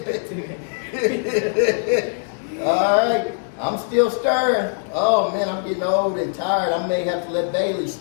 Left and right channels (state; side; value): silent; right; digital silence